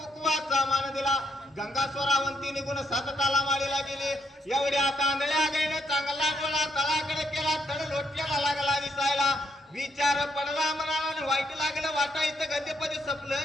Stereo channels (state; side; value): normal; both; correlation 0.75